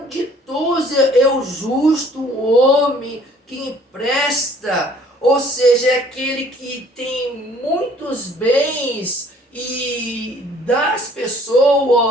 ditoso é o justo, o homem que empresta, ou seja, é aquele que tem muitos bens e dá às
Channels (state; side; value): normal; both; correlation 0.57